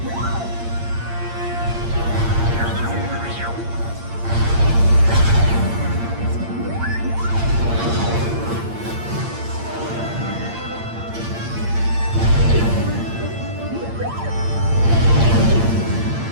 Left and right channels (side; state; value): left; late; 8.7 ms